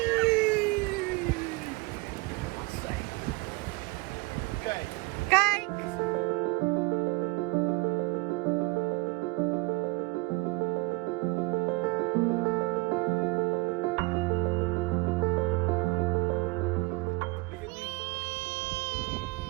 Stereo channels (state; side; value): quieter; left; 24.1 dB